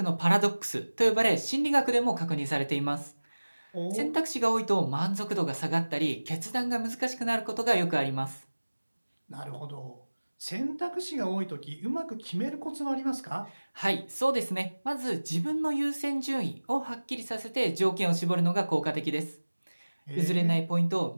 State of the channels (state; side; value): inverted; both; correlation -1.00